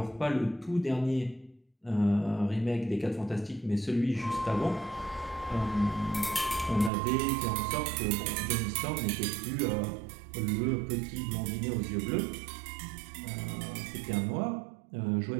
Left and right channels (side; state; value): left; drops out; at 6.9 s